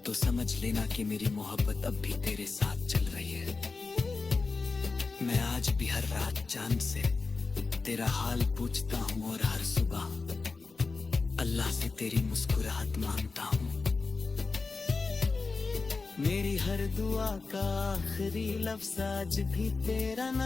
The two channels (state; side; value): quieter; right; 4.2 dB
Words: तो समझ लेना कि मेरी मोहब्बत अब भी तेरे साथ चल रही है। मैं आज भी हर रात चांद से तेरा हाल पूछता हूँ और हर सुबह अल्लाह से तेरी मुस्कुराहट मांगता हूँ। मेरी हर दुआ का आखिरी लफ्ज आज भी तेरा